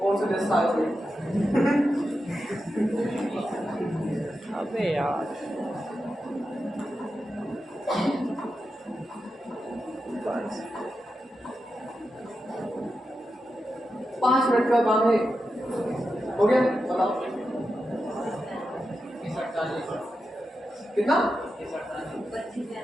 से देश साल से? अबे यार 5 मिनट का काम है, हो गया? बताओ कितना?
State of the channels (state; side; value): normal; both; correlation 0.89